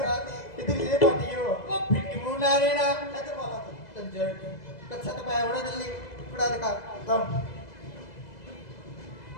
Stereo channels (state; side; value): late; right; 2.0 ms